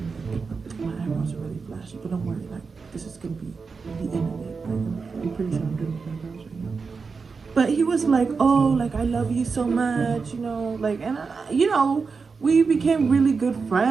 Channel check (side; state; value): left; quieter; 4.9 dB